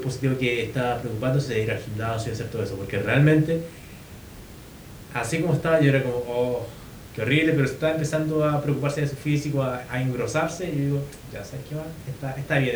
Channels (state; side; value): identical; both; correlation 1.00